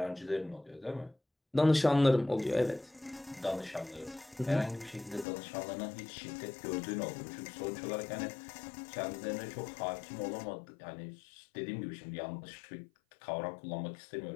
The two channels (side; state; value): right; drops out; at 5.2 s